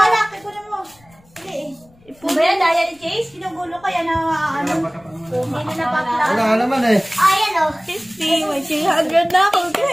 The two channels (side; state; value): left; noise; rumble, 29 dB below the sound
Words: anak. Ikunin mo. Hindi eh. Ano ba yan? Daya ni Jace? Ginugulo kaya na ano? Hindi na napapla. Wala ka naman eh. Ayan o. 50, may 300 na ako,